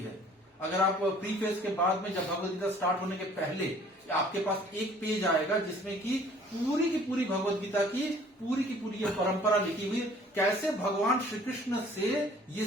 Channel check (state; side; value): normal; both; correlation 0.54